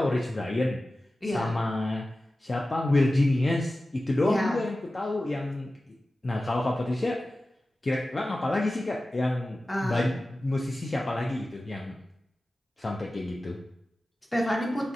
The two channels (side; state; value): both; normal; correlation 0.95